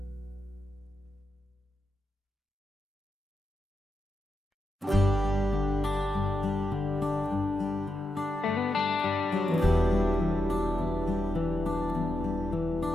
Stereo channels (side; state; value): both; normal; correlation 0.87